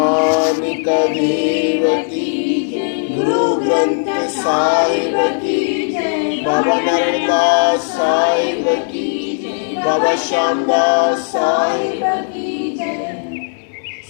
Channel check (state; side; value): silent; right; 68 dB below the other